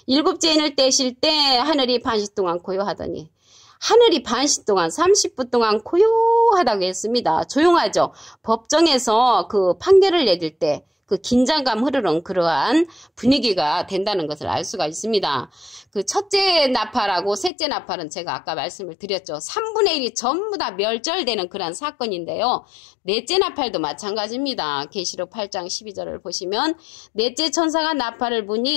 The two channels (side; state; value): right; drops out; at 17.5 s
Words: 일곱째 인을 떼실 때 하늘이 반시 동안 고요하더니 하늘이 반시 동안 30분 동안 고요하다고 했습니다. 조용하죠. 법정에서 그 판결을 내릴 때 그 긴장감 흐르는 그러한 분위기가 된다는 것을 알 수가 있습니다. 그 첫째 나팔하고 셋째 나팔은 제가 아까 말씀을 드렸죠. 3분의 1이 전부 다 멸절되는 그러한 사건인데요. 넷째 나팔도 마찬가지입니다. 계시록 8장 12절을 보시면 넷째 천사가 나팔을